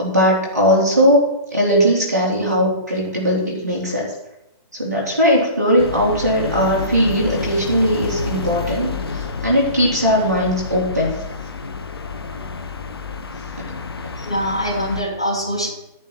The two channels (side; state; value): both; inverted; correlation -0.36